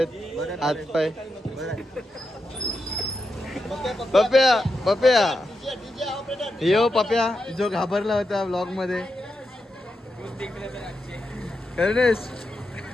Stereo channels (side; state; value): both; normal; correlation 0.86